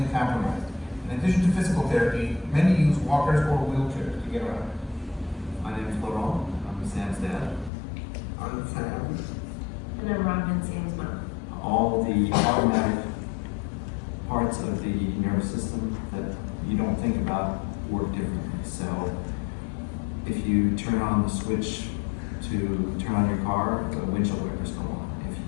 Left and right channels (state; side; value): drops out; right; at 7.7 s